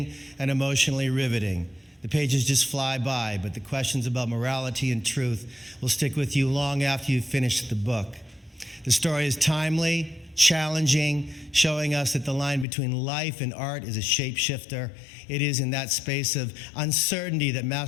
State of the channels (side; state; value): right; drops out; at 12.7 s